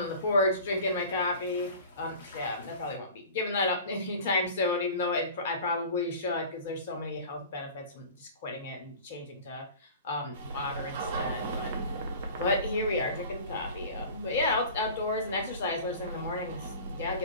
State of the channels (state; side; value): inverted; both; correlation -0.41